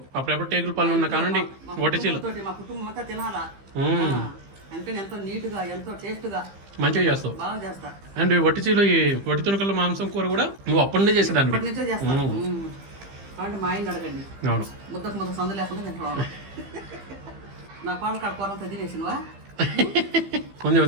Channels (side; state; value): left; late; 15 ms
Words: అప్పుడెప్పుడు టేగుల పళ్ళు ఉన్న కానండి ఒటిచీలు మా కుటుంబం అంతా తినాలా అందుకని ఎంతో నీట్గా ఎంతో టేస్ట్గా మంచిగా చేస్తావు. బాగా చేస్తా. అండ్ ఈ ఒటిచీలు ఈ ఒటి తుణుకల మాంసం కూర కూడా నువ్వు అప్పటి నుంచే చేసేదాన్ని. ఇప్పటి నుంచే చేస్తా. కాబట్టి మా ఆయన అడగండి. అవును. ముద్దకు ముద్ద సందు లేకుండా తింటాం. నా పాలు కాడ కూర అంతా తినేసినవా? ఉంది